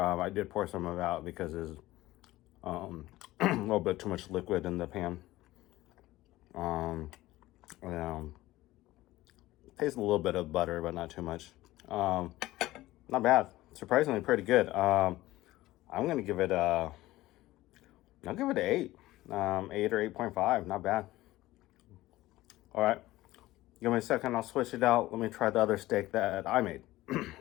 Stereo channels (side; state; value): right; quieter; 17.0 dB